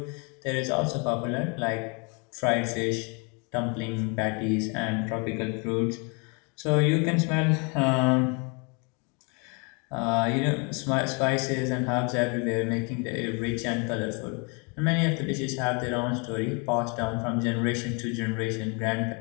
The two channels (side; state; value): right; quieter; 33.4 dB